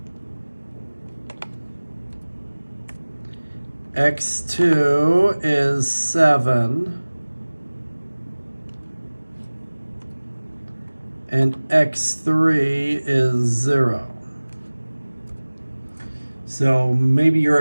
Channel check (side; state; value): both; inverted; correlation -1.00